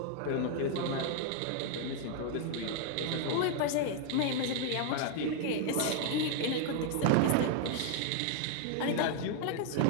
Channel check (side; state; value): both; different; correlation 0.00